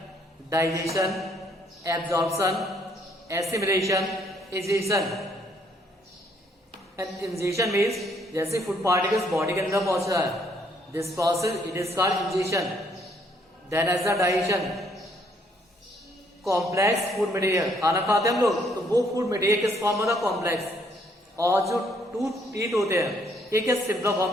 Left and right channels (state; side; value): normal; both; correlation 0.68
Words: digestion, absorption, assimilation, egestion. And ingestion means जैसे फूड पार्टिकल्स बॉडी के अंदर पहुंच रहा है, this process it is called ingestion. Then as the digestion, complex food material, खाना खाते हैं हम लोग, तो वो फूड मटेरियल किस फॉर्म में था, कॉम्प्लेक्स, और जो टूथ टीथ होते हैं ये किस सिंपल